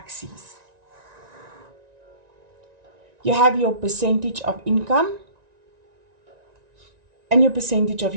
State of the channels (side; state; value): left; late; 1.9 ms